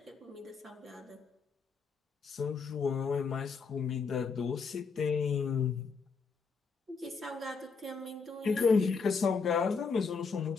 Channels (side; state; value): right; quieter; 5.1 dB